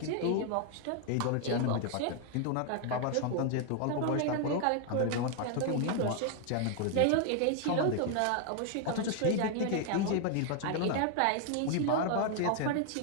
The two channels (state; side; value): different; both; correlation 0.00